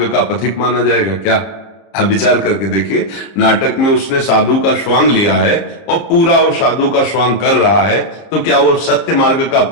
का पथिक माना जाएगा? क्या आप विचार करके देखिए, नाटक में उसने साधु का स्वांग लिया है और पूरा वो साधु का स्वांग कर रहा है, तो क्या वो सत्य मार्ग का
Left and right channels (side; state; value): right; late; 30 ms